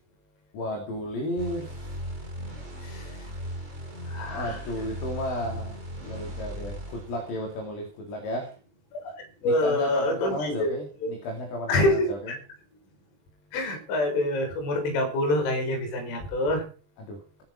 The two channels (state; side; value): late; right; 20 ms